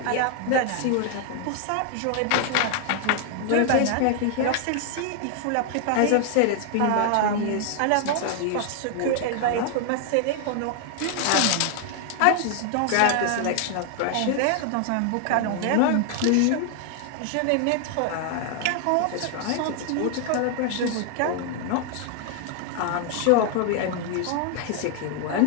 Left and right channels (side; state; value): both; different; correlation 0.00